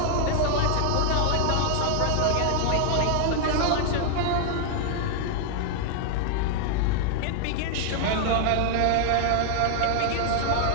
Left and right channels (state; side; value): different; both; correlation 0.00